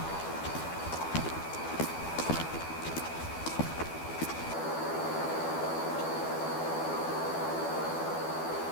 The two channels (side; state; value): right; late; 12 ms